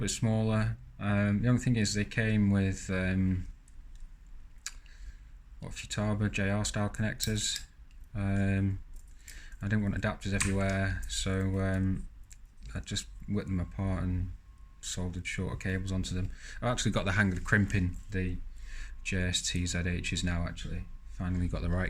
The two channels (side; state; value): both; identical; correlation 1.00